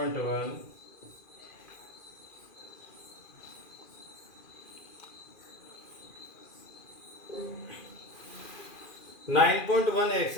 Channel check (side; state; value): right; late; 2.4 ms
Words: नाइन पॉइंट वन